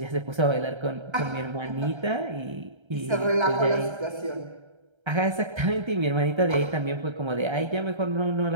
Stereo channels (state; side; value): late; left; 1.3 ms